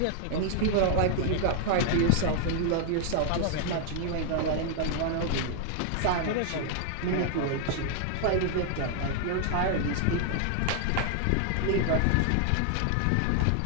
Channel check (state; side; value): different; both; correlation 0.00